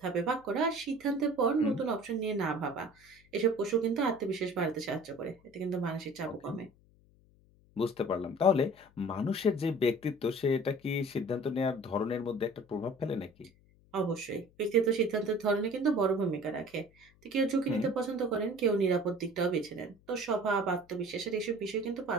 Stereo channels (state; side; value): noise; left; hum, 29 dB below the sound